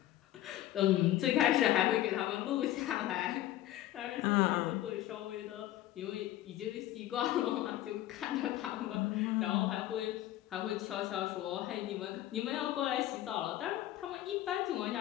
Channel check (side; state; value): right; quieter; 14.1 dB